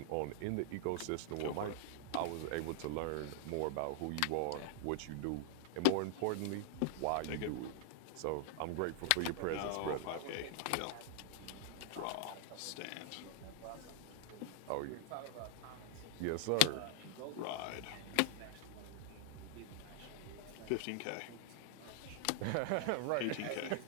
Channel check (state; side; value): different; both; correlation -0.01